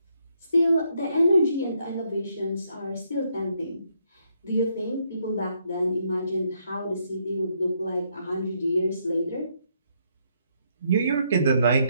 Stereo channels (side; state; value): both; inverted; correlation -0.74